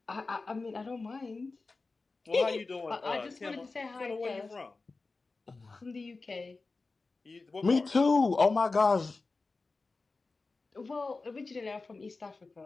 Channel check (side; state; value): right; quieter; 3.8 dB